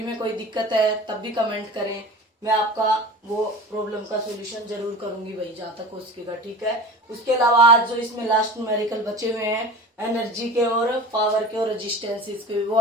में कोई दिक्कत है तब भी कमेंट करें. मैं आपका वो प्रॉब्लम का सोल्यूशन जरूर करूंगी भाई, जहां तक हो सकेगा. ठीक है. उसके अलावा आज जो इसमें लास्ट न्यूमेरिकल बचे हुए हैं एनर्जी के और पावर के और रेजिस्टेंसेस के, वो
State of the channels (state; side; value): normal; both; correlation 0.35